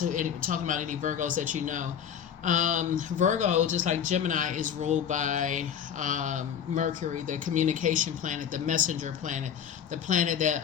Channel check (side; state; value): right; quieter; 8.5 dB